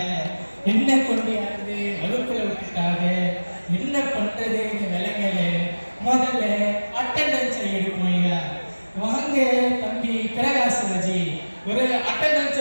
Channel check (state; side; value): inverted; both; correlation -1.00